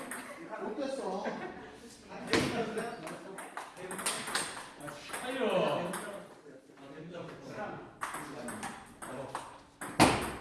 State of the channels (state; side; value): identical; both; correlation 1.00